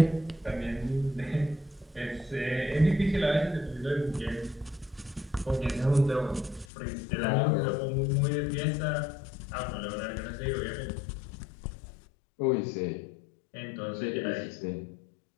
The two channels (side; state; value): right; drops out; at 6.7 s